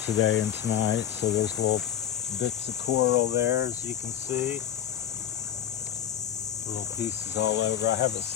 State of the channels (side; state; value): right; quieter; 10.1 dB